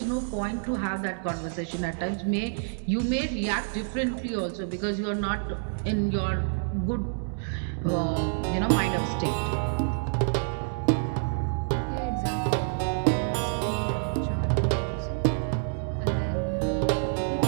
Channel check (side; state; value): left; silent; digital silence